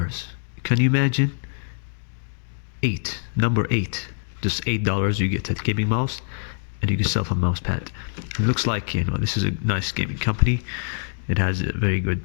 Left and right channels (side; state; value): right; silent; digital silence